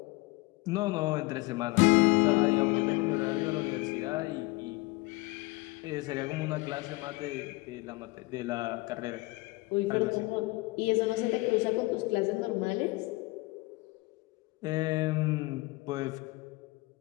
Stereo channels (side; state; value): right; quieter; 23.2 dB